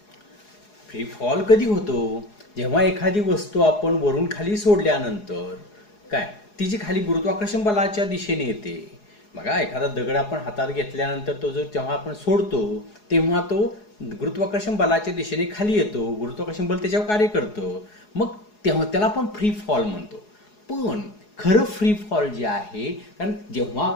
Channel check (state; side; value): late; right; 4.8 ms